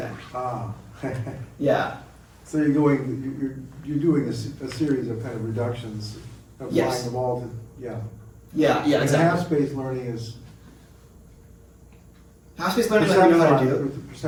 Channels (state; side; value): identical; both; correlation 1.00